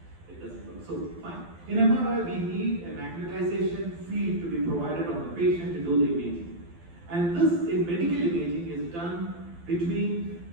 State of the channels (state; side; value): late; left; 12 ms